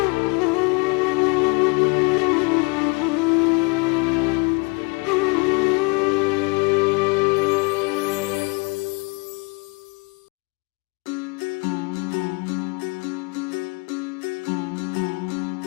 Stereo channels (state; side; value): quieter; right; 29.7 dB